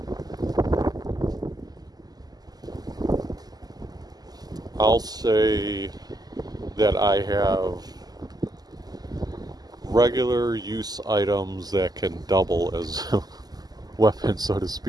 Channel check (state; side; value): late; left; 0.19 ms